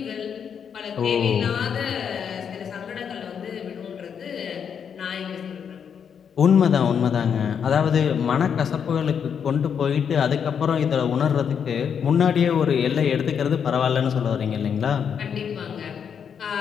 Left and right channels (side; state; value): right; quieter; 7.4 dB